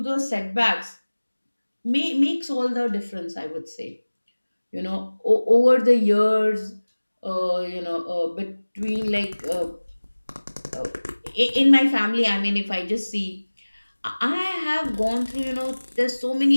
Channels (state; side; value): inverted; both; correlation -1.00